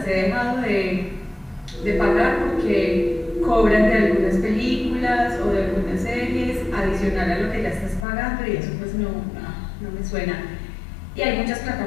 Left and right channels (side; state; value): right; drops out; at 8.1 s